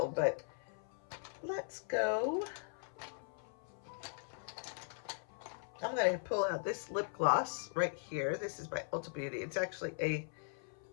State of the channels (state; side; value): silent; right; 51 dB below the other